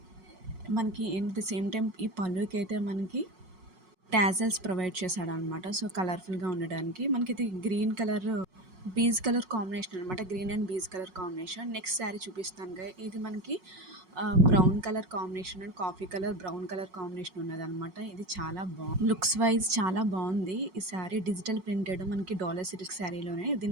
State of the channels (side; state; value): left; late; 5.5 ms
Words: మనకి ఎట్ ద సేమ్ టైం ఈ పళ్ళుకి అయితే మనకి టాజల్స్ ప్రొవైడ్ చేశాడు అనమాట. సో కలర్ఫుల్గా ఉండడానికి మనకి ఇది green colour beige colour combination అనమాట. Green and beige colour combination. Next sari చూపిస్తాను. ఇది మనకి brown colour combination and coffee colour brown colour combination ఉన్నదనమాట. ఇది చాలా బాగుంది, లుక్స్ వైజ్ చాలా బాగుంది. ఈ శారీ డిజిటల్ ప్రింటెడ్ మనకి డాలర్ సిల్క్ శారీలోనే.